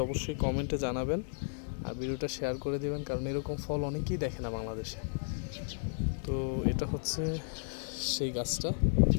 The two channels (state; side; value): silent; right; digital silence